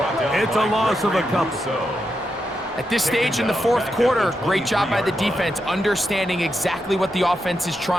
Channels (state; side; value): normal; both; correlation 0.85